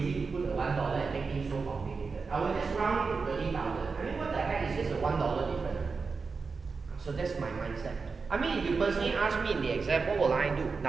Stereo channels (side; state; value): left; quieter; 4.7 dB